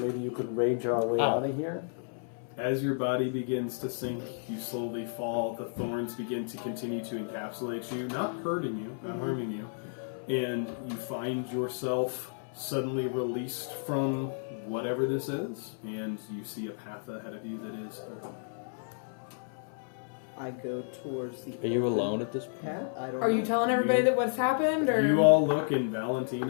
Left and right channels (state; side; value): silent; right; 56 dB below the other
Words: you could rage our way out of here. As your body begins to sink, you slowly fall. The thorns begin to continue to encapsulate you, not hurting you, not harming you. And you find yourself suddenly released from whatever this is, and you see a path ahead of you that is open. I go towards the. Are you alone at this point? Path? I don't Are know. you telling everybody that what's happened, or You all look, and